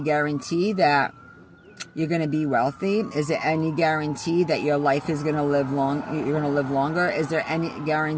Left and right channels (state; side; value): identical; both; correlation 1.00